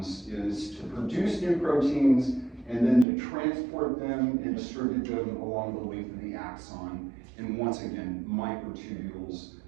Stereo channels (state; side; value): drops out; left; at 3.1 s